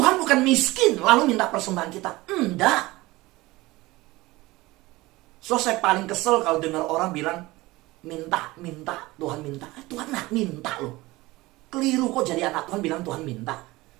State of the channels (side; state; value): left; quieter; 20.2 dB